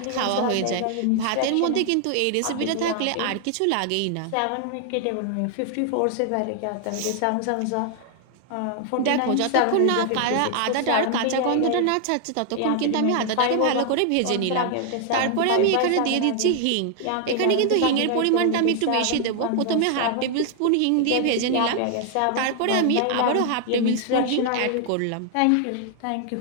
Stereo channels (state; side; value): different; both; correlation 0.00